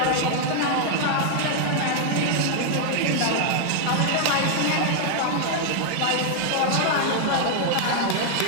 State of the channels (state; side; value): different; both; correlation 0.00